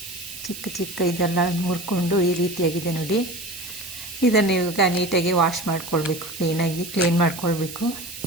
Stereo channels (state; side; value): noise; right; hiss, 11 dB below the sound